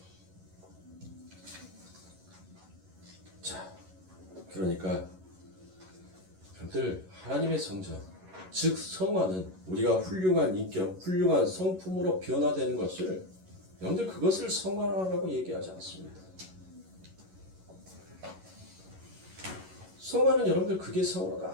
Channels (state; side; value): late; left; 11 ms